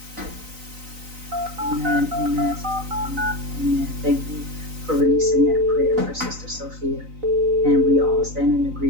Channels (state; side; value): late; left; 3.9 ms